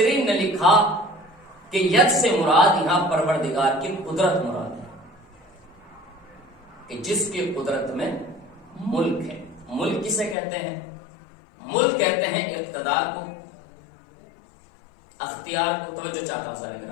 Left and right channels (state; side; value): drops out; right; at 10.4 s